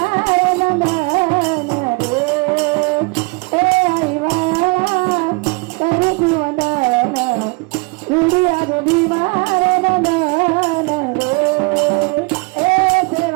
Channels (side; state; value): left; quieter; 29.0 dB